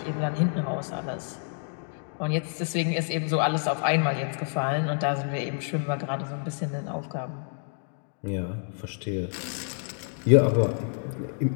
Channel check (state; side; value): silent; right; 56 dB below the other